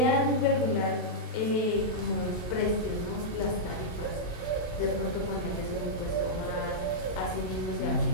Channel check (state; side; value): late; right; 27 ms